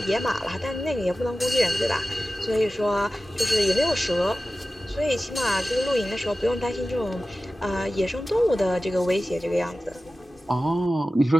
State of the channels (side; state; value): both; normal; correlation 0.95